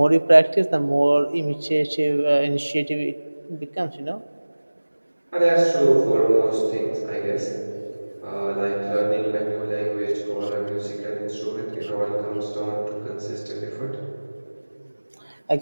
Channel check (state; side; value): inverted; both; correlation -1.00